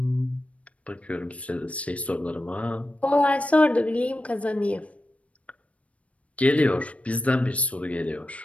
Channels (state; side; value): late; right; 0.065 ms